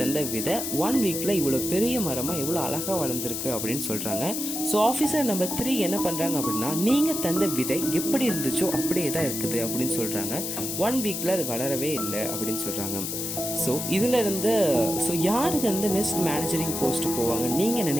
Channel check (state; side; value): noise; left; hiss, 4 dB below the sound